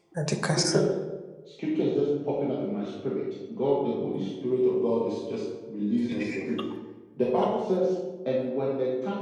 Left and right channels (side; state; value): both; identical; correlation 1.00